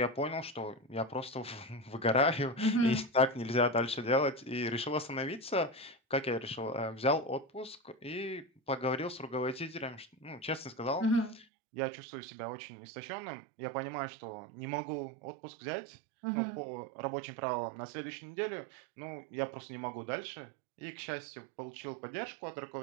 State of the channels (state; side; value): drops out; left; at 11.5 s